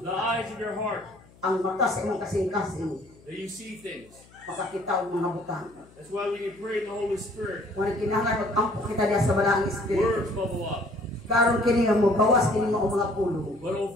The eyes of your heart. Ang mata sa imong kasing-kasing. That you see things. Makakita ang mga butang. That's why we can pray in the Holy Spirit. Kung kinahanglan mag-ampo kita diya sa balaang espiritu. Words bubble up. Karon kini nga mo bawas kini mo mga pulo. But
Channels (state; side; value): noise; left; hum, 26 dB below the sound